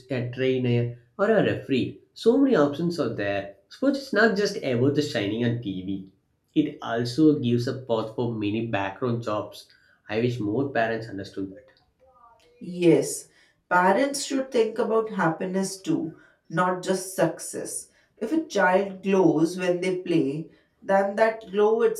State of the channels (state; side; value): identical; both; correlation 1.00